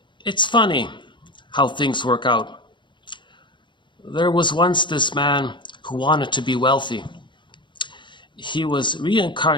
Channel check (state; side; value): late; right; 0.23 ms